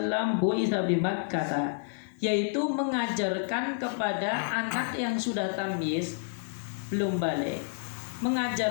bu'itsa bi Makkah, yaitu mengajarkan kepada anak yang sudah tamyiz belum balik,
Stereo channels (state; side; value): silent; right; digital silence